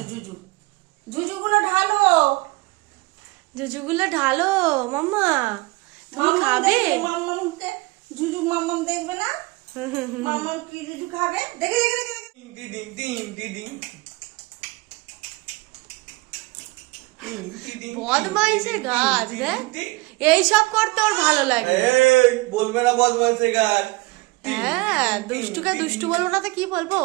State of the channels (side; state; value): left; quieter; 23.6 dB